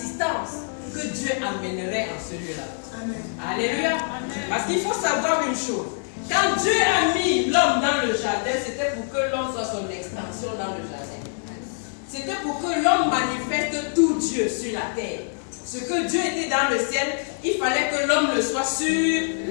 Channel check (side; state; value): right; silent; 58 dB below the other